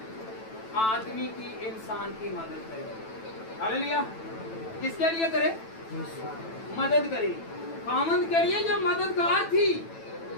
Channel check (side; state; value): right; late; 9.1 ms